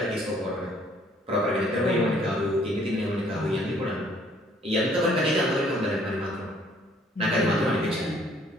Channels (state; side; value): normal; both; correlation 0.61